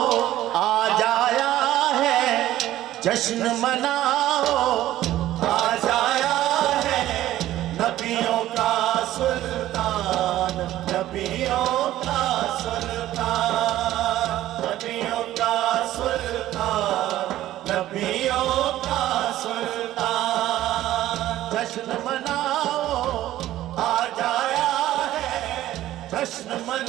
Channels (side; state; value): left; quieter; 14.1 dB